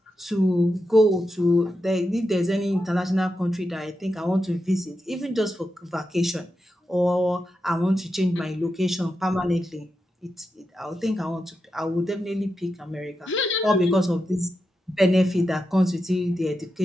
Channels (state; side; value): normal; both; correlation 0.88